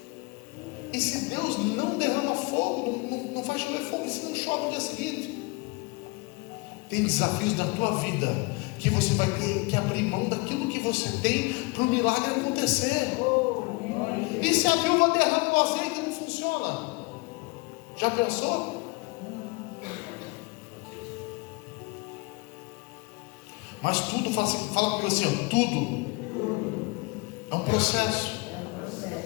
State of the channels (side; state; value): right; quieter; 27.2 dB